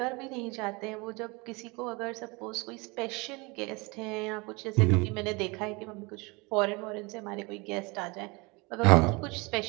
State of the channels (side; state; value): left; quieter; 27.0 dB